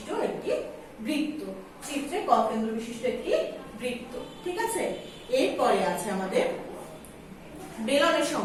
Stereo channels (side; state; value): both; identical; correlation 1.00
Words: একটি বৃত্ত। চিত্রে ক কেন্দ্র বিশিষ্ট একটি বৃত্ত। ঠিক আছে, এরপরে আছে আমাদের বেলনের